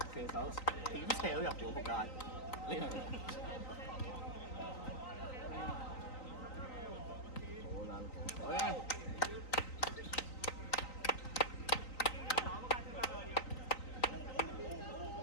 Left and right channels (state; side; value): late; right; 3.9 ms